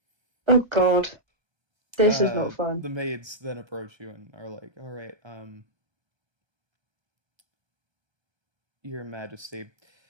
Oh god, this is not fun. The maids then approach you and are like, "All right, Your Majesty,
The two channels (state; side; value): late; left; 1.3 ms